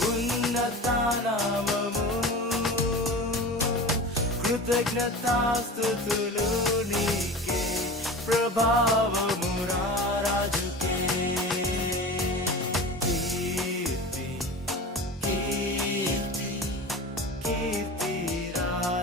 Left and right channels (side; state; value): both; normal; correlation 0.32